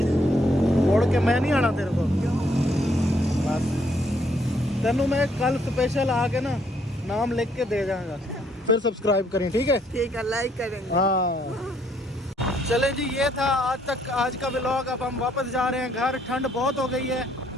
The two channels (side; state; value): both; normal; correlation 0.69